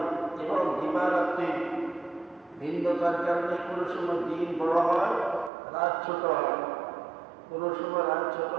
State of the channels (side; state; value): left; drops out; at 5.5 s